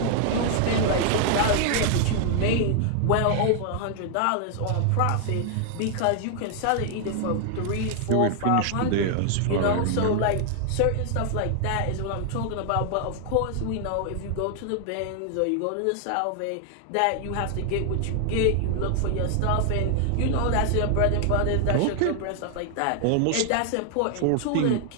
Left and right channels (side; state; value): both; different; correlation 0.00